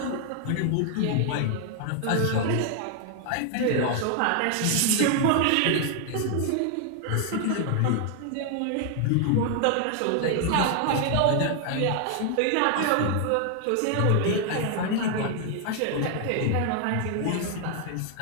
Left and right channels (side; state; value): both; different; correlation 0.00